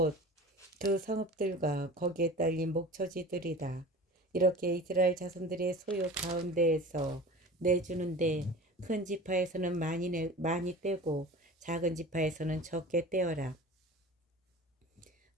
그 성읍들과 거기에 딸린 목초지들이다. 이렇게 이스라엘 자손들의 소유 가운데에서 내주는데 큰 지파에서는 많이 떼고 작은 지파에서는 적게 떼어라.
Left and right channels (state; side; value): normal; both; correlation 0.38